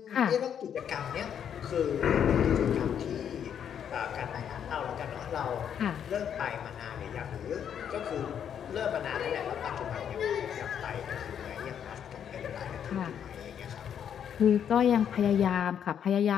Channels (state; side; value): quieter; right; 8.7 dB